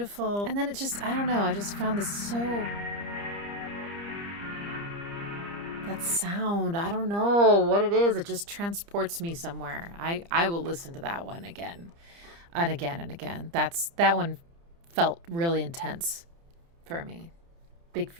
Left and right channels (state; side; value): late; left; 30 ms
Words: And then it just, I don't know, I just found this so, that sound, I don't know what it is, it just transports me somewhere. I will listen to that one again and again and again. That one felt really intense for me. Big